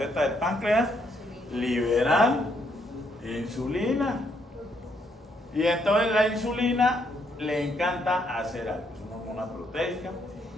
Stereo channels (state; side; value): normal; both; correlation 0.73